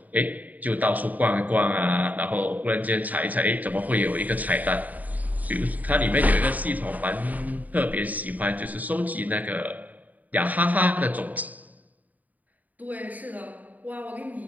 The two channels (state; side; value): late; left; 0.077 ms